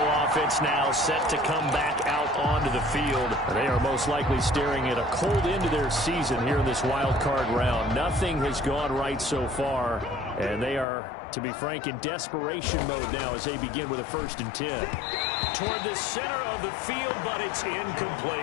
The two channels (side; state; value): right; drops out; at 10.9 s